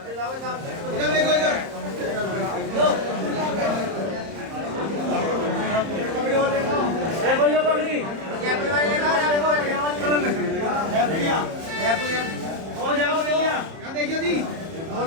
इधर देखो, इधर देखिए जी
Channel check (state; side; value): late; left; 31 ms